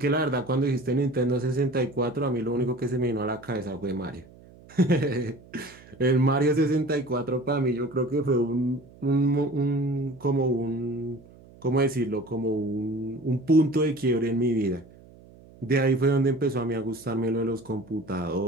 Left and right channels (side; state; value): right; noise; hum, 23 dB below the sound